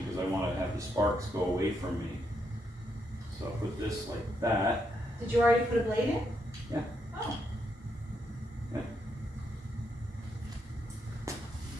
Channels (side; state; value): both; normal; correlation 0.79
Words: because I want to have the sparks go away from me. So I'll put this like that. Did you already put a blade in? Yeah. Oh.